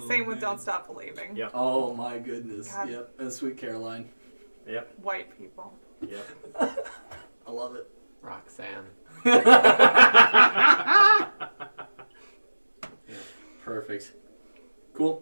Same with man. Don't Stop Believing. Yep. Oh my goodness. God. Yep. And Sweet Caroline. Yep. White people. Yep. I love it. Roxanne. Perfect.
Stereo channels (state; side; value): inverted; both; correlation -1.00